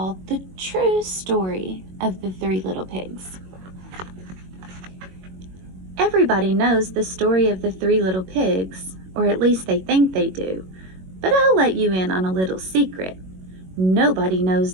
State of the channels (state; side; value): late; left; 21 ms